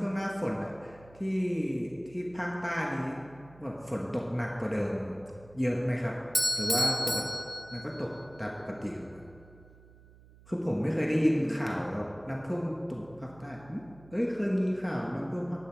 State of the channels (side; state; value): right; noise; hum, 23 dB below the sound